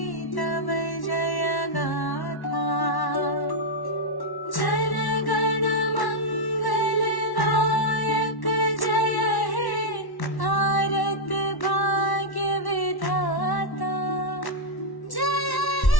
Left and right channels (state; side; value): late; right; 1.1 ms